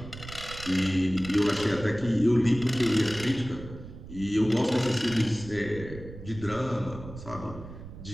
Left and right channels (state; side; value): noise; right; rumble, 14 dB below the sound